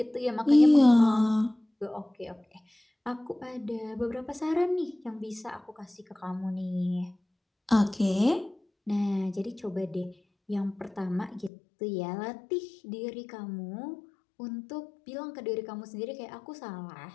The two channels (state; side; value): drops out; right; at 11.5 s